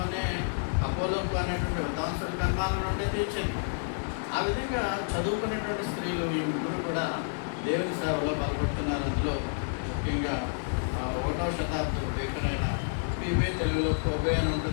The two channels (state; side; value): silent; right; digital silence